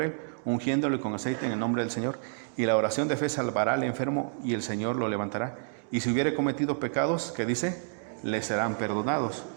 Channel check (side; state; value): left; silent; digital silence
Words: él, ungiéndole con aceite en el nombre del Señor. Y la oración de fe salvará al enfermo y el Señor lo levantará. Y si hubiere cometido pecados, ¿qué dice? Le serán perdonados.